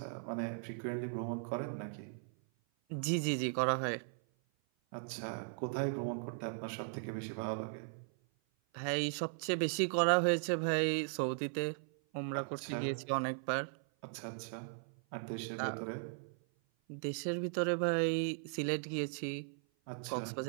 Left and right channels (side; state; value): left; silent; 53 dB below the other